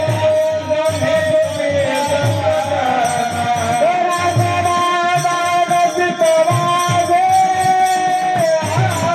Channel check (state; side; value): identical; both; correlation 1.00